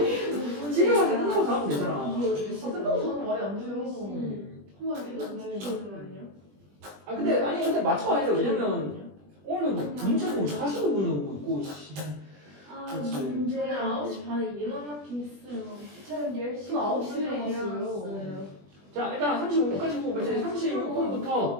집에 가서 끝나고 자면 되잖아. 아, 끝나고 저는 말이 안 돼요. 한번 얘기했는데. 잠시만요. 아 근데 맞춰야 돼. 왜냐면 오늘 뭐 문자 보고 40분을 오고 있고 씨. 그렇지. 저는 9시 반에 일어났긴 했어요. 저는 10시 저 9시에 5분에 일어났어요. 자 일단 35분까지 보고 이제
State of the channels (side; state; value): left; late; 20 ms